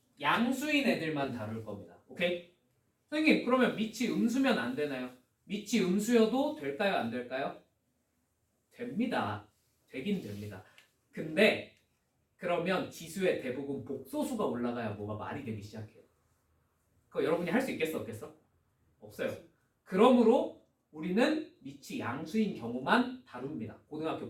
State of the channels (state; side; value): identical; both; correlation 1.00